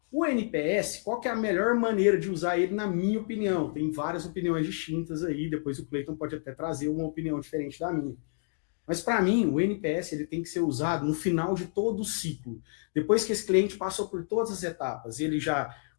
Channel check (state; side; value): silent; right; digital silence